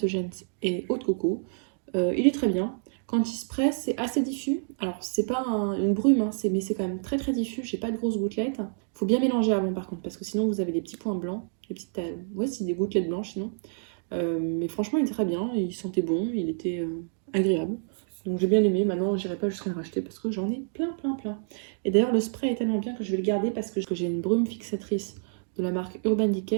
et Eau de Coco. Il est très bien. Quand il se presse, c'est assez diffus. Alors, c'est pas une brume, hein, mais c'est quand même très diffus. J'ai pas de grosses gouttelettes. Faut bien mélanger avant, par contre, parce que sinon, vous avez des petits points blancs. Des petites, ouais, c'est des gouttelettes blanches, sinon. Mais franchement, il était très bien. Il sentait bon. Il était agréable. Donc, j'ai bien aimé. Maintenant, j'irai pas jusqu'à le racheter parce que j'en ai plein. Et d'ailleurs, le spray est tellement bien que je vais le garder parce que j'ai une brume fixatrice de la marque Urban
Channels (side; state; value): left; silent; digital silence